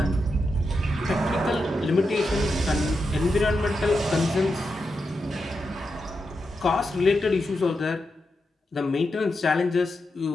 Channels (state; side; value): normal; both; correlation 0.87